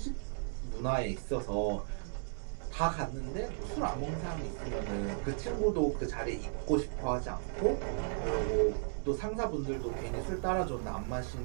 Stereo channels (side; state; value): left; silent; digital silence